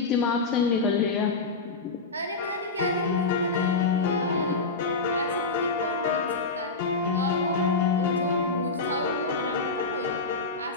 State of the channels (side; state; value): right; quieter; 4.0 dB